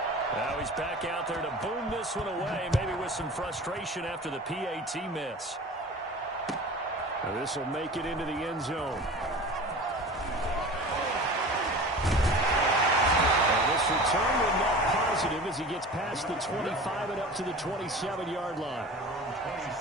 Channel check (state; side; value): normal; both; correlation 0.37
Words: Now he's back out there to boom this one away, maybe with some frustration after the PAT miss. Now this will make it into the end zone. And this return will net positive as he gets past the 25 and up to the 27-yard line.